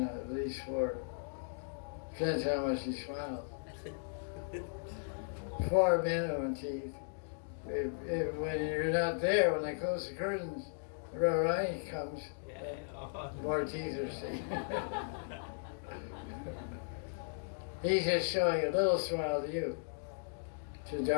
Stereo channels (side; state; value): right; silent; digital silence